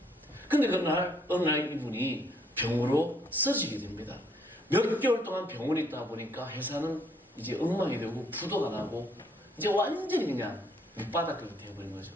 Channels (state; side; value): normal; both; correlation 0.67